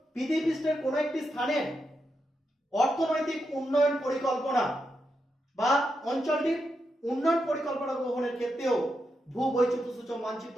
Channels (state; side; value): normal; both; correlation 0.85